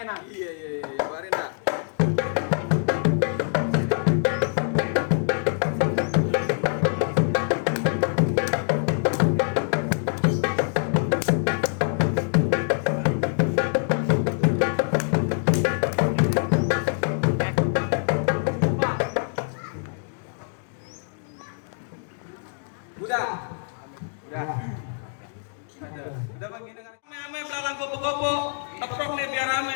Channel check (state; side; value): silent; right; 62 dB below the other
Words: Iya, keluarin dah. Udah bang gini kan. Ame belalang kupu-kupu. Teprok nih biar rame.